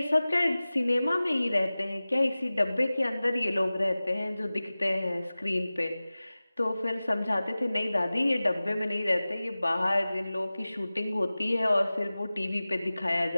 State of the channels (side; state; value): both; inverted; correlation -0.97